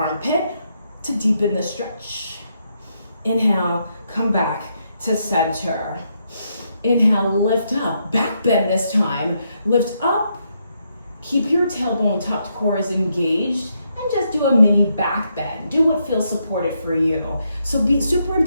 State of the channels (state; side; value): inverted; both; correlation -0.78